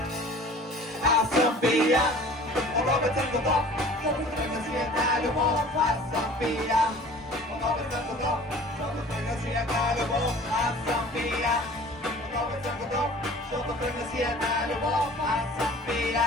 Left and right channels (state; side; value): normal; both; correlation 0.46